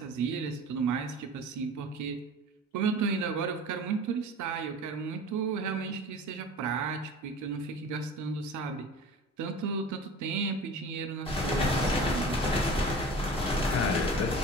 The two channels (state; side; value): normal; both; correlation 0.38